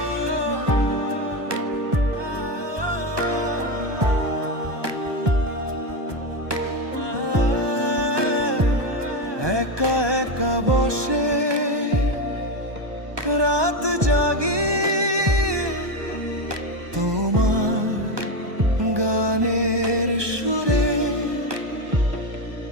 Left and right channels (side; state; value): left; late; 1.2 ms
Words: একা একা বসে রাত জাগি, তোমার গানের সুরে,